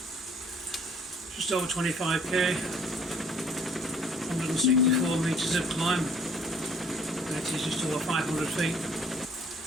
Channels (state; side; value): normal; both; correlation 0.57